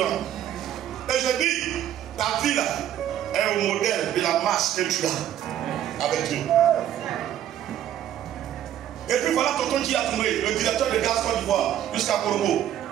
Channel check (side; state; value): left; quieter; 11.2 dB